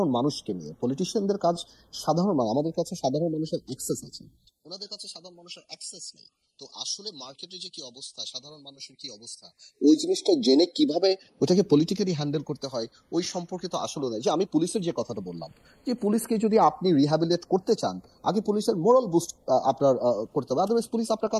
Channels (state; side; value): identical; both; correlation 1.00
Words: মানুষকে নিয়ে, পলিটিশিয়ানদের কাজ সাধারণ মানুষ, আমাদের কাছে সাধারণ মানুষের অ্যাক্সেস আছে, ওনাদের কাছে সাধারণ মানুষের অ্যাক্সেস নেই। তো আসলে মার্কেটে যে কি অবস্থা, সাধারণ মানুষের কি অবস্থা, ওই জিনিসটা জেনে কিভাবে ওটাকে পলিটিক্যালি হ্যান্ডেল করতে হয় ওই সম্পর্কে তো আসলে নাই। যে আমি পুলিশের যে কথাটা বললাম, যে পুলিশকে যদি আপনি রিহ্যাবিলিটেট করতে চান, আগে পুলিশের মোরাল বুস্ট আপনার করতে হবে, আদারওয়াইজ পুলিশ আপনার